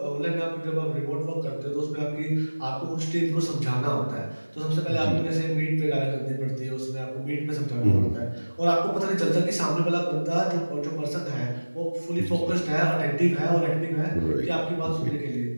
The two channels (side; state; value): both; inverted; correlation -1.00